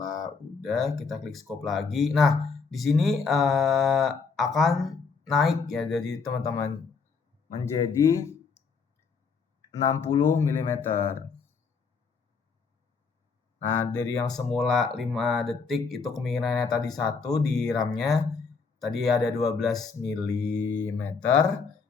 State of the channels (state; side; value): quieter; right; 5.1 dB